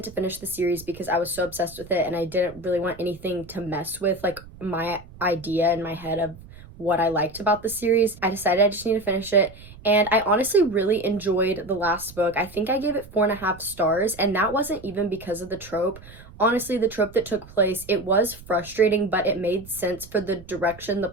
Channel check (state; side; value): noise; right; rumble, 19 dB below the sound